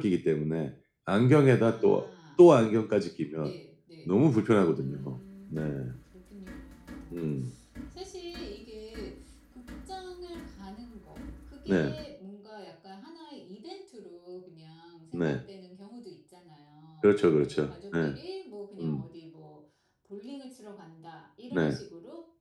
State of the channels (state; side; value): identical; both; correlation 1.00